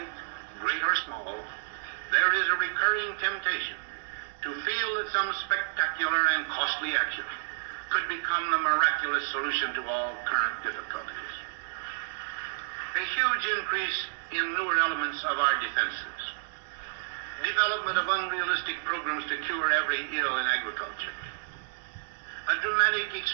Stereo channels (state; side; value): silent; left; digital silence